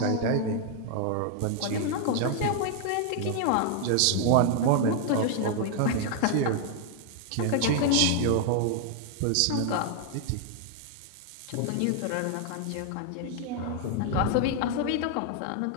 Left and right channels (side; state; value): both; different; correlation 0.00